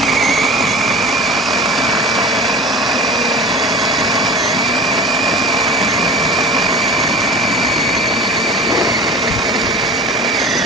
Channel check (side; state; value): both; normal; correlation 0.36